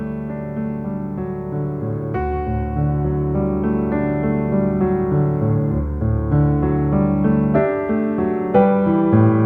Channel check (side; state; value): both; identical; correlation 1.00